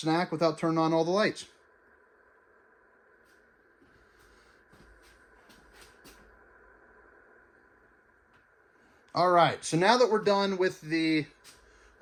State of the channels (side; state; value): both; identical; correlation 1.00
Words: without turning on all the lights. All right, so now that we're done with the,